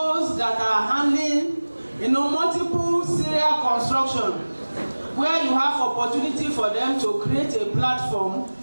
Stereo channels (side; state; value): both; inverted; correlation -1.00